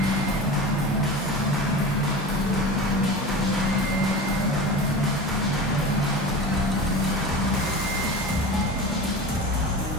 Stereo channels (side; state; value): both; normal; correlation 0.31